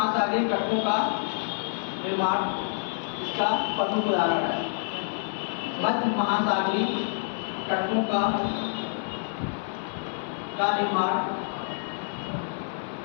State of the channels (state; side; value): silent; right; 56 dB below the other